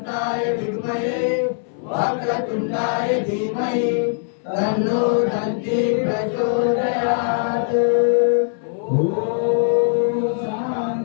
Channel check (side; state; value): right; silent; 65 dB below the other